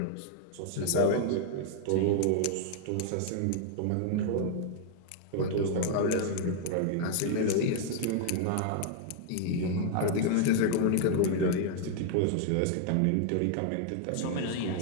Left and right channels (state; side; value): different; both; correlation -0.01